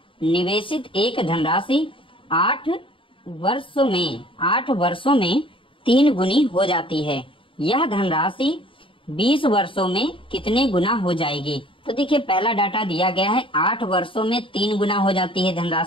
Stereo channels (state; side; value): late; right; 0.25 ms